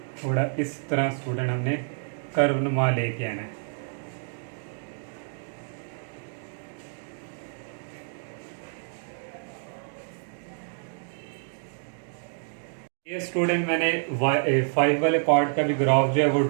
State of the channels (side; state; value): left; silent; 59 dB below the other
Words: थोड़ा इस तरह स्टूडेंट हमने कर्व नुमा लेके आना है। ये स्टूडेंट मैंने 5 वाले पार्ट का भी ग्राफ जो है वो